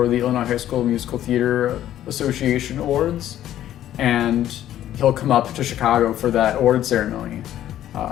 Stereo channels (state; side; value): quieter; right; 12.1 dB